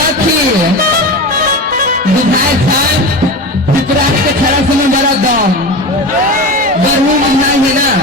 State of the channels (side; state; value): both; normal; correlation 0.27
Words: विधायक साहब पिपरारी के छड़ा समय बड़ा दम गर्मी महीना है ना